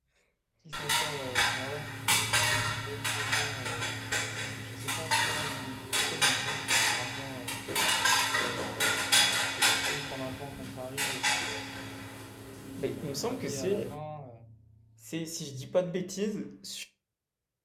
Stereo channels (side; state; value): both; identical; correlation 1.00